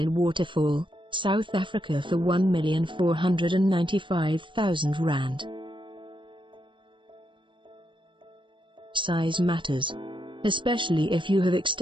Waterfall, South Africa for R1,495,000. Size matters, especially if you have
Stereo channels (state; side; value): late; left; 0.24 ms